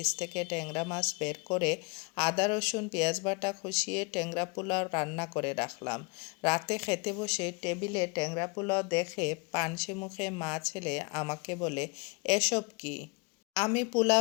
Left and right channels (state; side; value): quieter; right; 30.1 dB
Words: থেকে ট্যাংরা মাছ বের করে আদা রসুন পেঁয়াজ বাটা কষিয়ে ট্যাংরা পোলাও রান্না করে রাখলাম? রাতে খেতে বসে টেবিলে ট্যাংরা পোলাও দেখে পানসে মুখে মা ছেলে আমাকে বলে, এসব কি? আমি